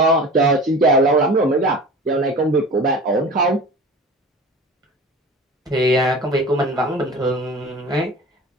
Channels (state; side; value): normal; both; correlation 0.37